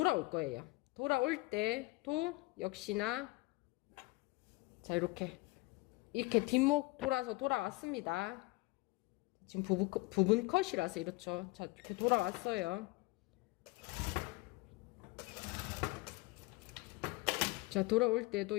거예요. 돌아올 때도 역시나 자, 이렇게 뒷목 돌아왔습니다. 지금 부분 컷이라서 이렇죠. 자, 이렇게 돌아왔어요. 자, 돌아올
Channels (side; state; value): right; quieter; 22.9 dB